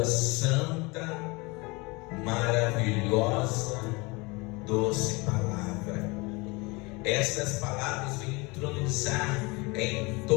santa, maravilhosa, doce palavra. Essas palavras vêm entronizar em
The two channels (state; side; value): quieter; right; 26.0 dB